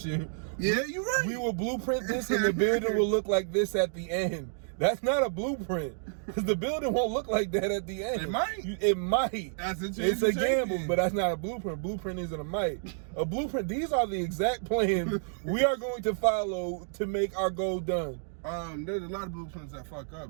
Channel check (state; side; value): silent; left; digital silence